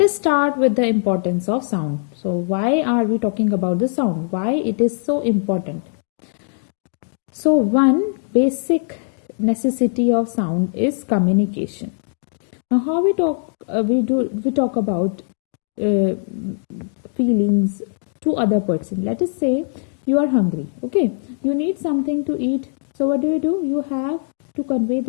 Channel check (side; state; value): right; silent; digital silence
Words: start with the importance of sound. So why are we talking about the sound? Why it is so important? So one basic necessity of sound is communication. Now how we talk we talk about feelings to other person. Let us say you are hungry. Okay, you need something to eat. So what do? You have to convey